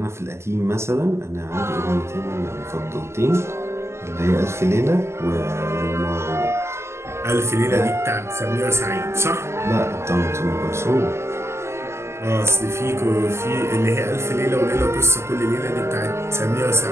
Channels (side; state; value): left; late; 0.13 ms